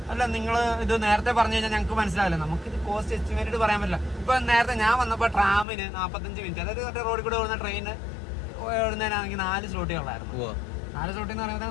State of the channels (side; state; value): right; drops out; at 5.7 s